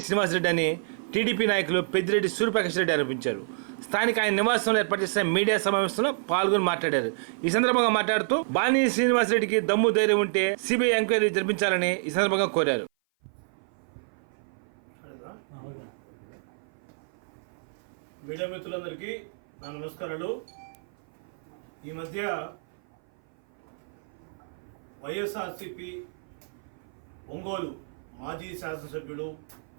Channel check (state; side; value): silent; left; 56 dB below the other